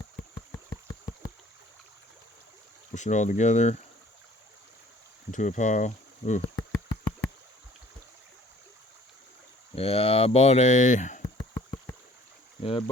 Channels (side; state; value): both; normal; correlation 0.54